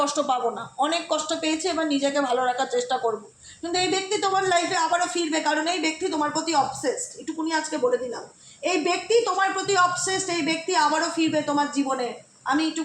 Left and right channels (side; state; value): both; identical; correlation 1.00